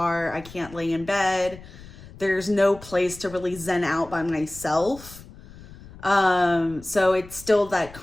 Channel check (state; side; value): noise; left; rumble, 18 dB below the sound